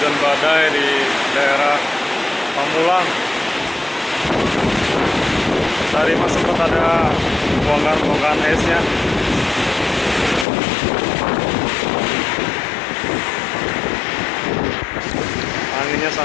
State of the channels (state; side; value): drops out; right; at 10.5 s